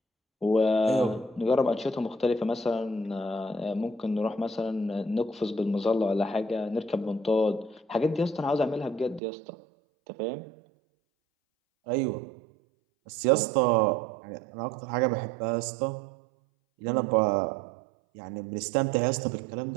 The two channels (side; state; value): left; drops out; at 9.2 s